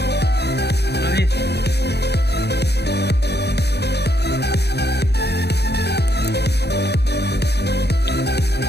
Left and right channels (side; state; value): right; late; 0.48 ms